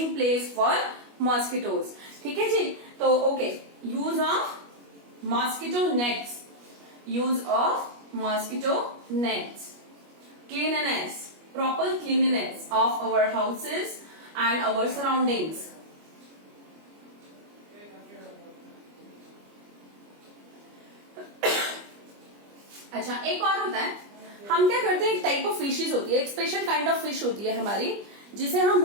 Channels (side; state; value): left; late; 25 ms